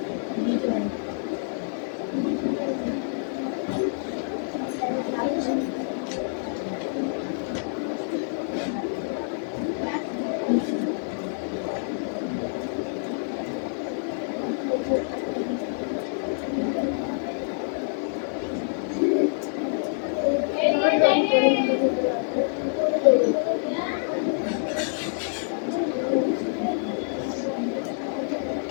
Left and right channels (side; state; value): right; silent; digital silence